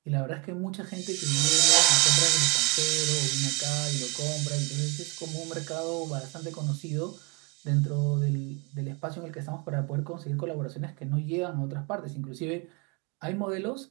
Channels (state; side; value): quieter; left; 27.8 dB